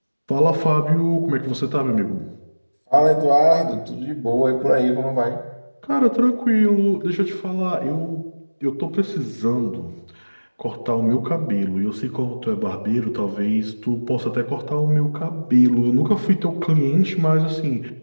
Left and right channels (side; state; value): both; inverted; correlation -1.00